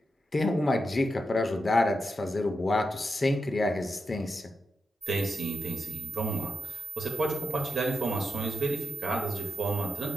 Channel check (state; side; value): normal; both; correlation 0.87